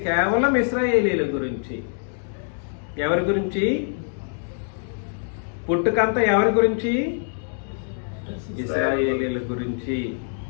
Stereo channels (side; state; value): right; silent; digital silence